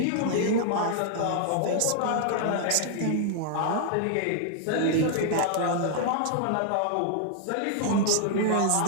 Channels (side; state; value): both; different; correlation -0.01